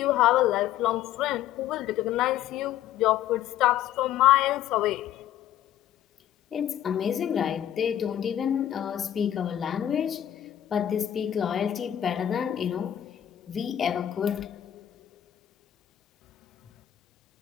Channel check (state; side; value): quieter; right; 11.4 dB